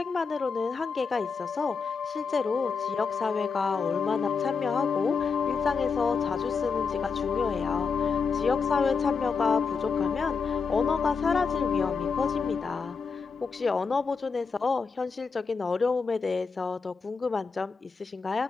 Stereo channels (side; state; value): right; quieter; 5.2 dB